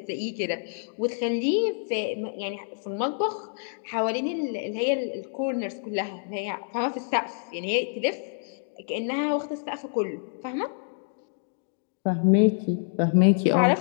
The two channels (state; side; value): silent; right; digital silence